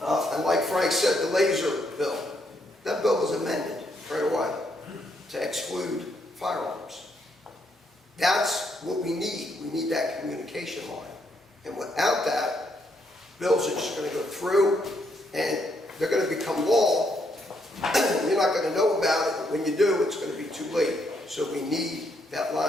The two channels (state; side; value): normal; both; correlation 0.75